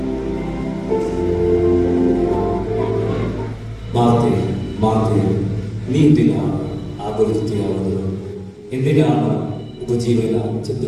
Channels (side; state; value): both; identical; correlation 1.00